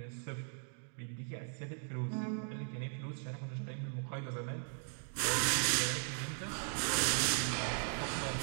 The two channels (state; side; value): silent; left; 52 dB below the other